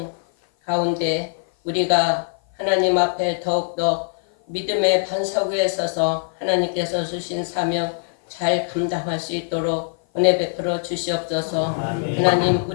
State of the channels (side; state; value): right; silent; 55 dB below the other